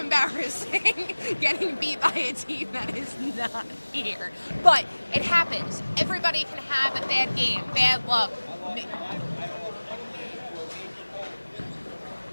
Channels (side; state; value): both; inverted; correlation -1.00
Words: getting beat by a team that is not here. But it happens. Everybody can have a bad game, bad luck.